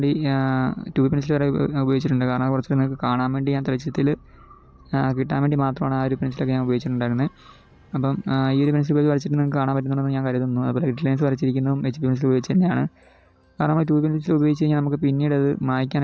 2B പെൻസിൽ വരെ ഉപയോഗിച്ചിട്ടുണ്ട്. കാരണം കുറച്ച് നിങ്ങൾക്ക് കാണാൻ വേണ്ടി ഞാൻ തെളിച്ചത്തിൽ കിട്ടാൻ വേണ്ടി മാത്രമാണ് ആ ഒരു പെൻസിലൊക്കെ ഞാൻ ഉപയോഗിച്ചിട്ടുണ്ടായിരുന്നത്. അപ്പം ഈ ഒരു പെൻസിൽ ഉപയോഗിച്ച് വരച്ചിട്ട് നിങ്ങൾക്ക് കാണാൻ പറ്റുന്നുണ്ടെന്ന് ഞാൻ കരുതുന്നു. അതുപോലെ ഗ്രിഡ് ലൈൻസ് വരച്ചിരിക്കുന്നതും HP പെൻസിൽ ഉപയോഗിച്ച് തന്നെയാണ്. കാരണം നമ്മൾ 2B പെൻസിൽ ഉപയോഗിച്ച് കഴിഞ്ഞാൽ നമുക്ക് പിന്നീട് അത്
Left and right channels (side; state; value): both; identical; correlation 1.00